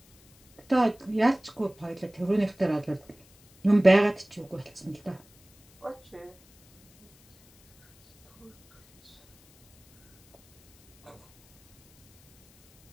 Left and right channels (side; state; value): left; noise; hiss, 30 dB below the sound